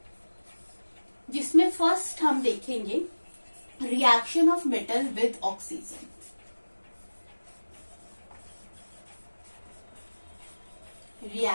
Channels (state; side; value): inverted; both; correlation -1.00